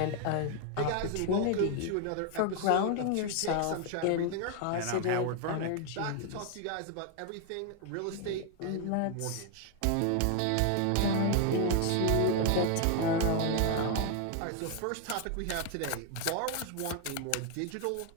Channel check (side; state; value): both; different; correlation 0.00